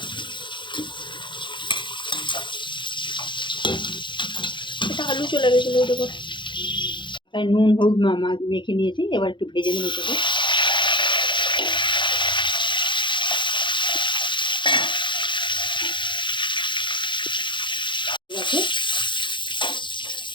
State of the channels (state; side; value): late; right; 0.23 ms